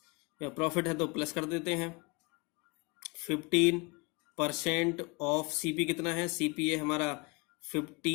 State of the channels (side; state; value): right; quieter; 28.2 dB